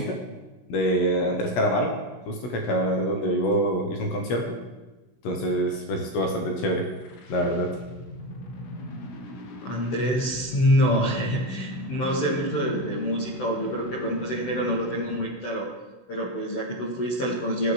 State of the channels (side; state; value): right; late; 16 ms